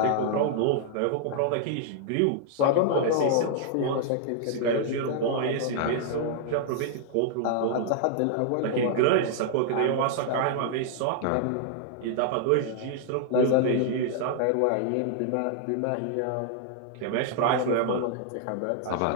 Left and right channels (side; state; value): both; different; correlation -0.01